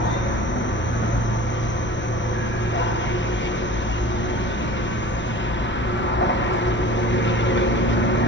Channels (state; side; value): normal; both; correlation 0.40